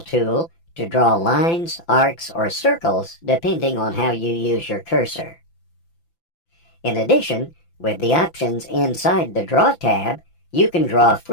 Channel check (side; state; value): right; late; 5.9 ms